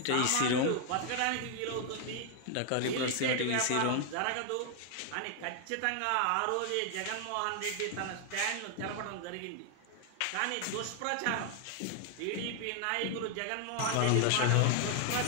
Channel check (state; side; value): different; both; correlation 0.00